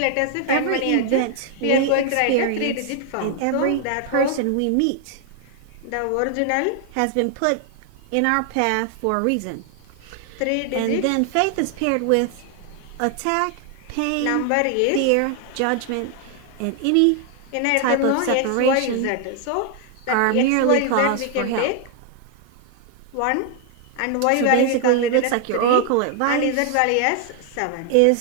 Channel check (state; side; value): different; both; correlation 0.00